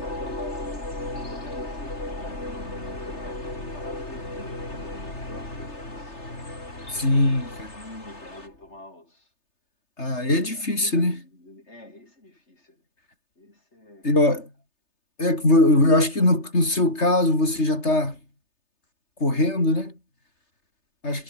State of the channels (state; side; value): late; right; 3.3 ms